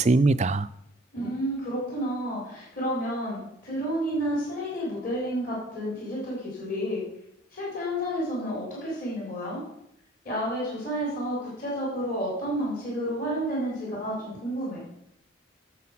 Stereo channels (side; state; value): both; normal; correlation 0.49